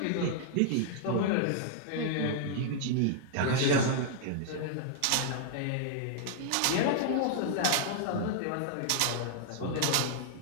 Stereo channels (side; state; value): both; different; correlation -0.01